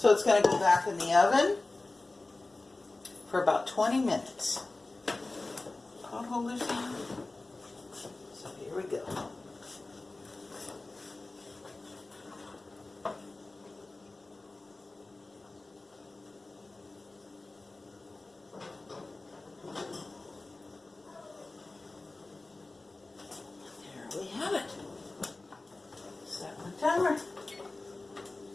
it's going to go back in the oven for about 20 minutes. Pot holders in. So here we go. There we have it. Set my timer.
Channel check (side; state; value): right; quieter; 3.2 dB